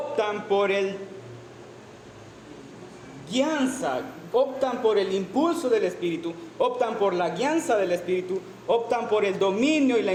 por el guianza, optan por el impulso del Espíritu, optan por la guianza del Espíritu, optan por el dominio y la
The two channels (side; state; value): both; identical; correlation 1.00